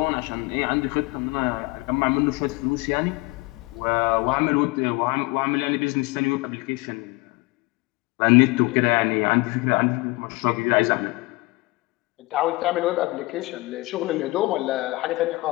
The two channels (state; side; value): quieter; right; 23.3 dB